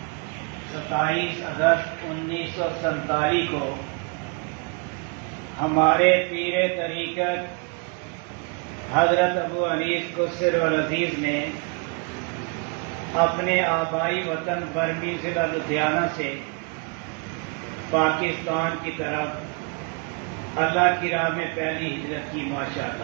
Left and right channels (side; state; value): left; quieter; 33.8 dB